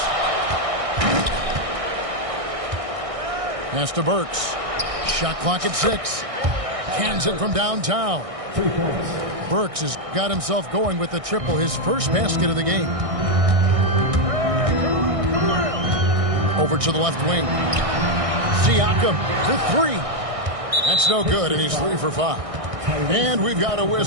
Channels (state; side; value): late; left; 1.6 ms